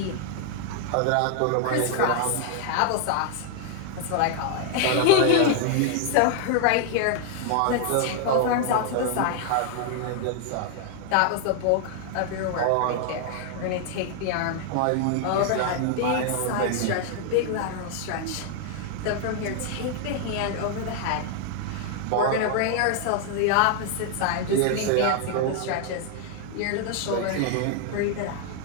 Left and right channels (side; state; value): both; different; correlation 0.00